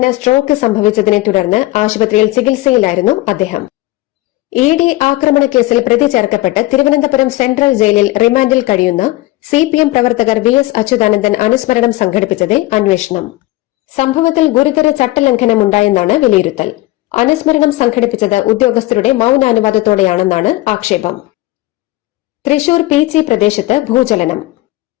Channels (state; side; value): quieter; right; 18.6 dB